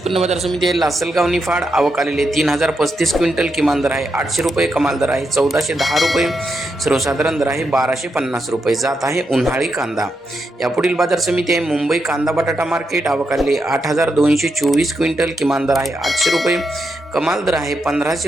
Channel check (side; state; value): both; normal; correlation 0.84